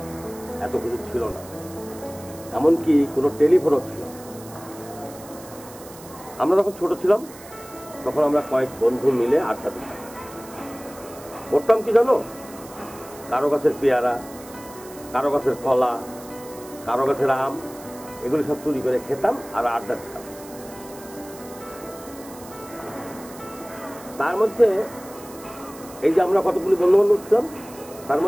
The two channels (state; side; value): noise; right; hiss, 19 dB below the sound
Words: এত কিছু ছিল না। এমনকি কোনো টেলিফোনও ছিল না। আমরা যখন ছোট ছিলাম তখন আমরা কয়েক বন্ধু মিলে আড্ডা দিতাম। করতাম কি জানো? কারো গাছের পেয়ারা, কারো গাছের কলা, কারো গাছের আম, এগুলি সব চুরি করে খেতাম আর আড্ডা দিতাম। তার মধ্যে এই যে আমরা কতগুলি বন্ধু বান্ধব ছিলাম, তার